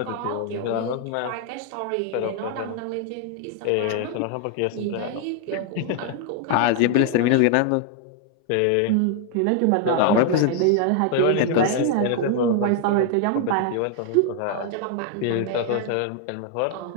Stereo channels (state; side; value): different; both; correlation 0.00